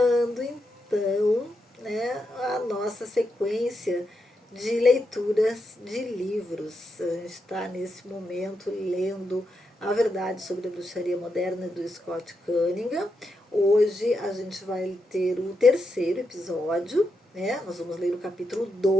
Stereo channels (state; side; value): normal; both; correlation 0.84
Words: então, né, a nossa sequência de leituras de livros. A gente está nesse momento lendo A Verdade sobre a Bruxaria Moderna, do Scott Cunningham. Hoje a gente vai ter o terceiro episódio, né? Nós vamos ler o capítulo